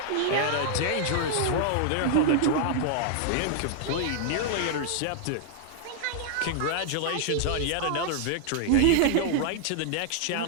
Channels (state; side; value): different; both; correlation 0.00